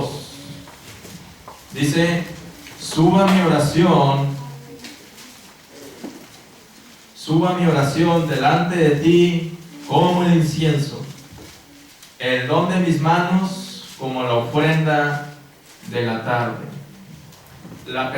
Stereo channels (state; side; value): identical; both; correlation 1.00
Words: Dice, suba mi oración delante de ti como el incienso, el don de mis manos como la ofrenda de la tarde. La